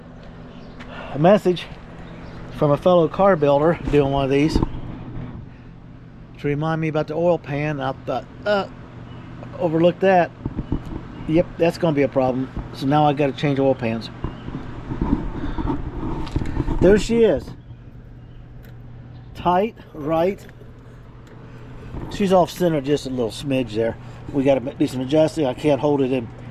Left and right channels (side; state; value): both; identical; correlation 1.00